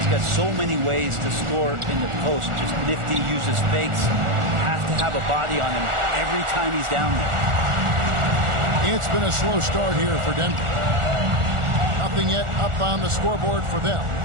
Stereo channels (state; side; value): late; left; 1.4 ms